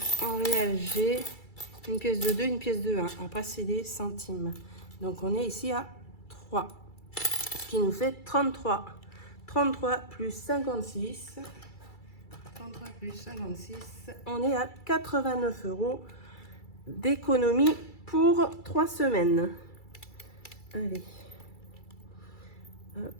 en réel, j'ai une pièce de 2, une pièce de 1. Après, c'est des centimes. Donc, on est ici à 3. Ce qui nous fait 33. 33 plus 56. 33 plus 56. On est à 89 € d'économie pour 3 semaines. Allez. Hop.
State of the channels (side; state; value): right; late; 2.3 ms